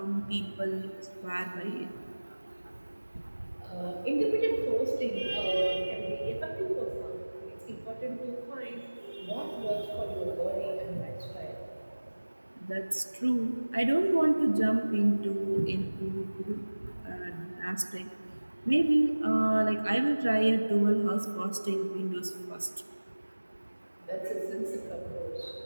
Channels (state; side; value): inverted; both; correlation -1.00